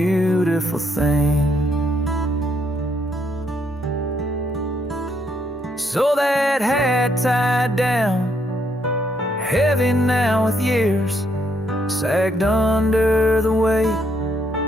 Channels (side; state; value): both; normal; correlation 0.73